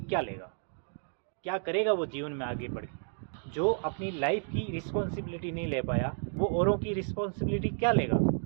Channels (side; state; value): left; silent; digital silence